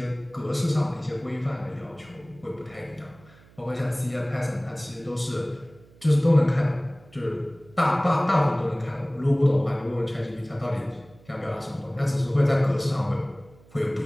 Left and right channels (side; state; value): right; noise; hum, 26 dB below the sound